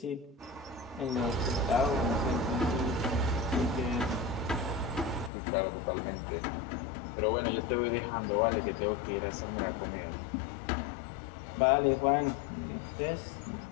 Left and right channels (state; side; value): drops out; right; at 5.3 s